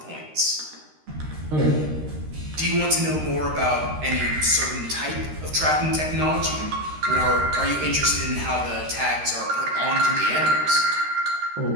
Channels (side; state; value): left; late; 13 ms